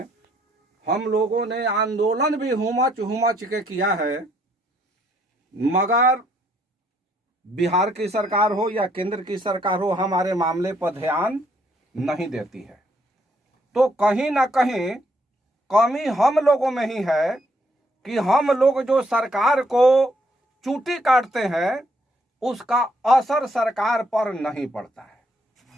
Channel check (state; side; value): normal; both; correlation 0.70